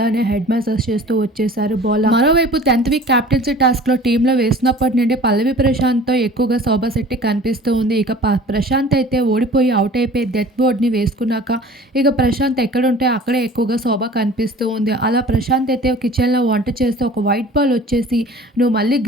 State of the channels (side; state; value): both; normal; correlation 0.44